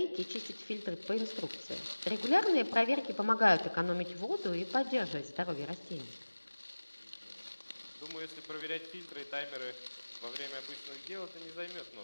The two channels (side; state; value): both; inverted; correlation -1.00